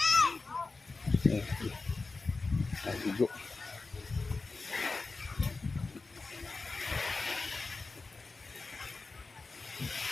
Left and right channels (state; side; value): quieter; right; 3.9 dB